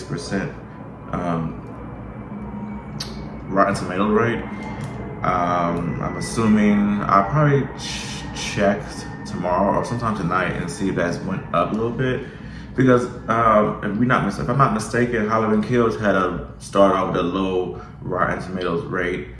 Rotten Tomato rate. I'm assuming I'll probably check tomorrow or sometime tonight and see if that's went up a little bit. Because if I'm not mistaken, Halloween Kills had started off with a low Rotten Tomatoes rate.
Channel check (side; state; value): both; identical; correlation 1.00